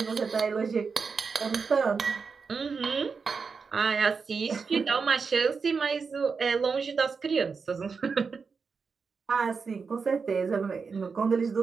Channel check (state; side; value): quieter; left; 5.2 dB